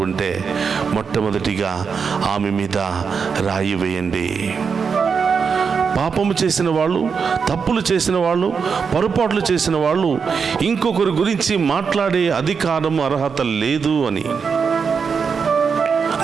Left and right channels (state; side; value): quieter; left; 5.9 dB